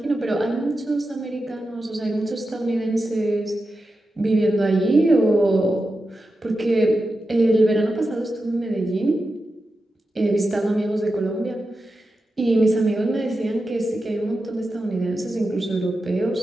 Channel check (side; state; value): both; normal; correlation 0.90